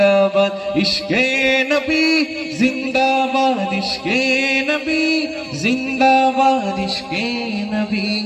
ইশকে নবী জিন্দাবাদ, ইশকে নবী জিন্দাবাদ, ইশকে নবী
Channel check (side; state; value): both; identical; correlation 1.00